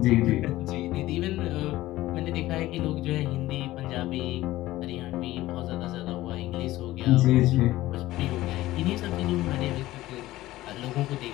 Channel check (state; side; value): quieter; right; 16.5 dB